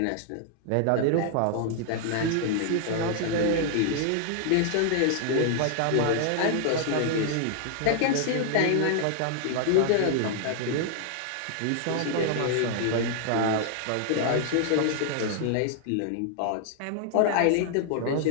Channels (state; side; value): different; both; correlation -0.01